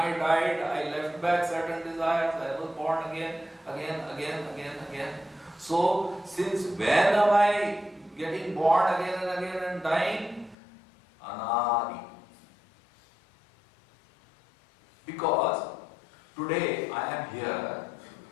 died, I left back certain desires, I was born again. So since when am I getting born again and dying? Anadi. Because today I am here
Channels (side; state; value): right; drops out; at 10.6 s